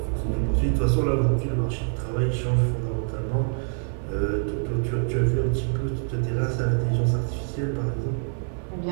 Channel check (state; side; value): silent; left; digital silence